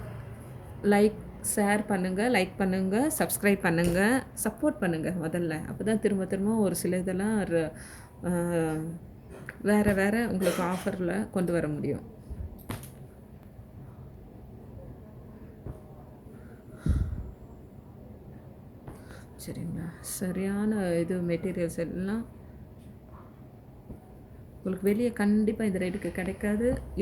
ஷேர் பண்ணுங்கள், லைக் பண்ணுங்கள், சப்ஸ்கிரைப் பண்ணுங்கள், சப்போர்ட் பண்ணுங்கள் முதல்ல. அப்போ தான் திரும்ப திரும்ப ஒரு சில இதெல்லாம் வேறு வேறு உங்களுக்கு ஆஃபரில் கொண்டு வர முடியும். சரிங்களா? சரியான இது மெட்டீரியல்ஸ் எல்லாம் உங்களுக்கு வெளியே கண்டிப்பாக இந்த ரேட்டுக்கு கிடைக்காது.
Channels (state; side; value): identical; both; correlation 1.00